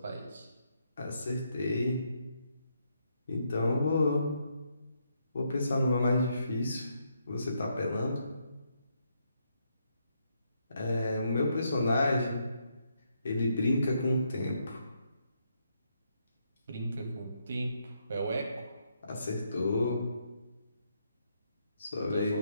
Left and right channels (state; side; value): inverted; both; correlation -0.77